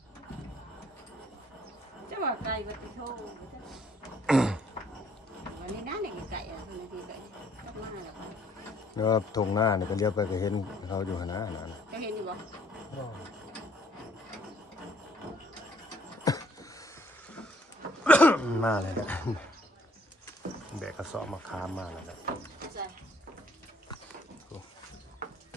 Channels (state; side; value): normal; both; correlation 0.63